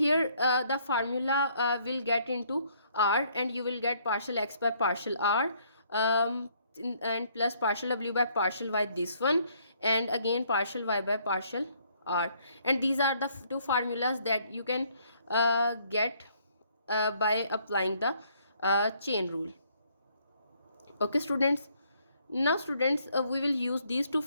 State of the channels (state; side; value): inverted; both; correlation -0.66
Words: the formula will get into r, and you will get partial x by partial r, and plus partial w by partial y, this one, and again partial y by partial r. And these are the two formulas that you can get by applying the chain rule. Okay students, now students, we will use these two